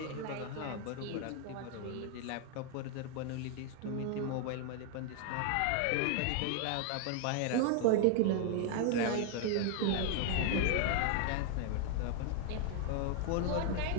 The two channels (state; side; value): different; both; correlation 0.00